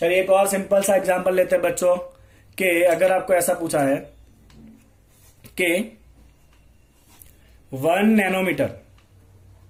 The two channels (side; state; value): both; identical; correlation 1.00